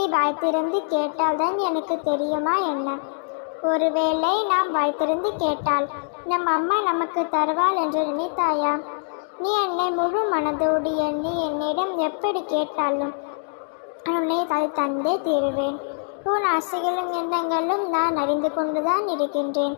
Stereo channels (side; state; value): right; silent; digital silence